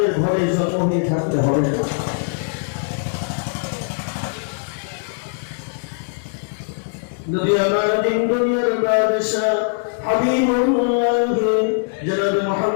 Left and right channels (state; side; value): silent; right; digital silence